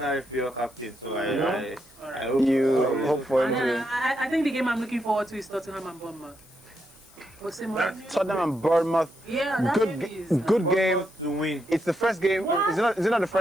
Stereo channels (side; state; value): left; noise; hiss, 26 dB below the sound